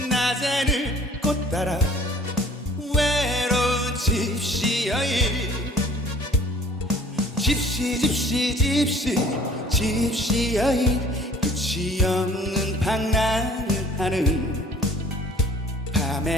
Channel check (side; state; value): both; normal; correlation 0.52